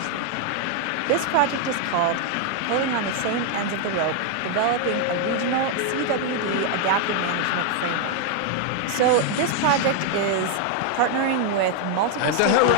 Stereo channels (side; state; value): both; different; correlation 0.00